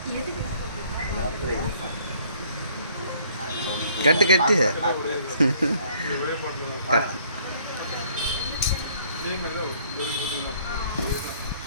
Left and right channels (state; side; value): inverted; both; correlation -0.61